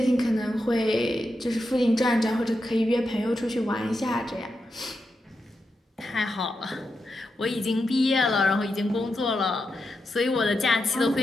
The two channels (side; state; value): both; normal; correlation 0.87